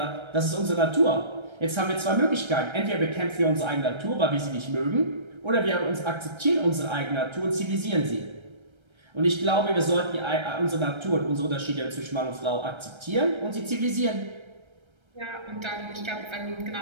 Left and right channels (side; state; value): left; late; 1.3 ms